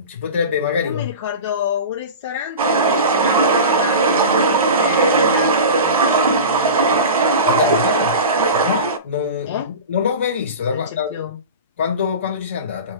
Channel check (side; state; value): both; inverted; correlation -0.31